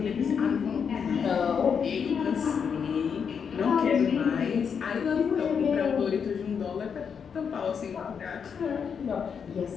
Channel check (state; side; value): quieter; right; 6.8 dB